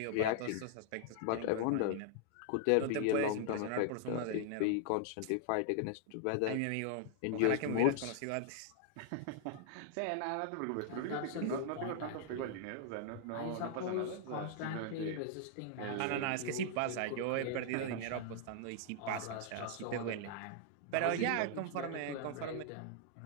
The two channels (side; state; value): both; different; correlation 0.00